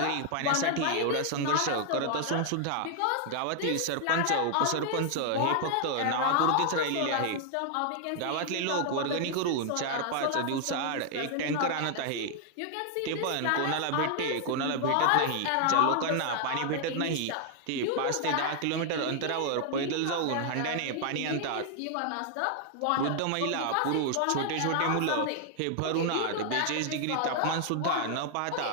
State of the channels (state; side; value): different; both; correlation 0.00